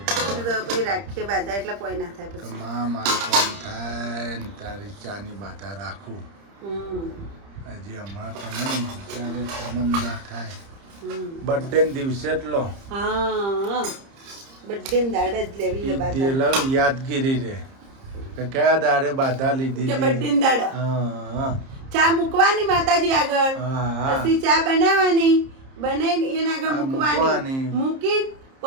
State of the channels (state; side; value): late; left; 30 ms